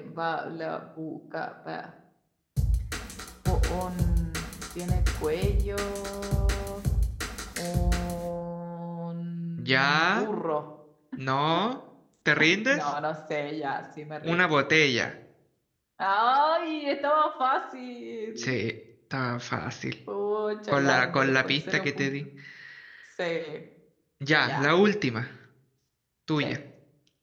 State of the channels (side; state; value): both; identical; correlation 1.00